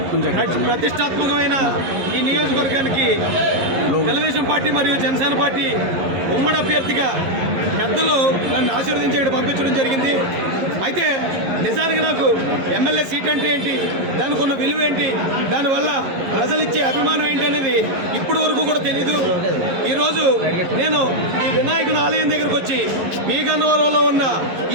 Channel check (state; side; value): late; left; 11 ms